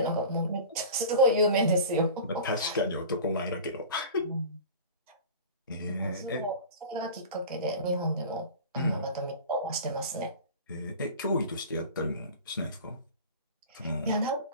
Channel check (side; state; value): both; inverted; correlation -0.37